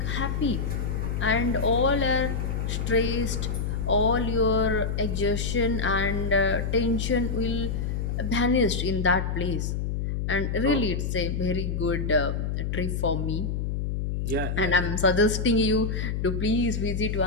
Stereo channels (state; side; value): noise; left; hum, 1 dB below the sound